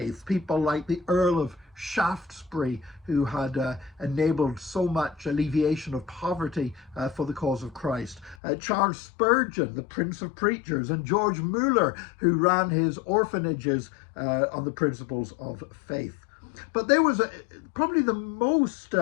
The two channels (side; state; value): right; drops out; at 8.3 s